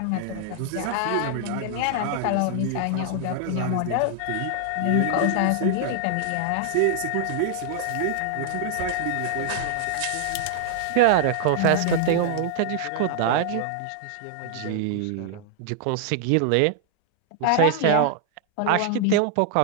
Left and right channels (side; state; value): both; different; correlation 0.00